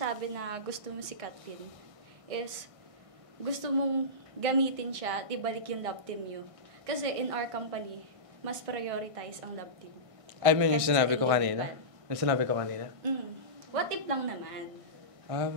na gusto mo si Katlin, is gusto mong gamitin siya at ibalik yung love team nyo. Kasi in our company, mas prioritize ang love team. I mean, yung Kasi sinabi ko sa kanina? Yung sinabi ko kanina? What if lang naman?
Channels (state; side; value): late; left; 1.6 ms